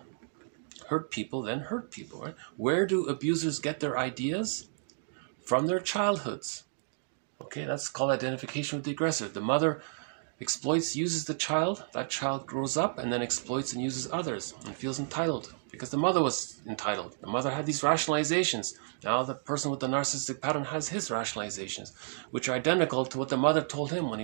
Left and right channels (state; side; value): silent; left; digital silence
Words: Hurt people, then hurt people. Right? Where do abusers get their ideas? From their childhoods. Okay, that's called identification with the aggressor. The mother exploits, uses the child. That child grows up and then exploits and uses others and feels entitled because the mother was entitled. The mother had these rationalizations. Now the person with the narcissistic pattern has his rationalizations, which are identical to what the mother told him when